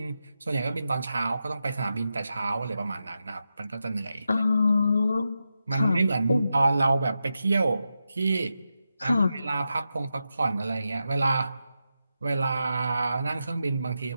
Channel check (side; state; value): both; inverted; correlation -0.88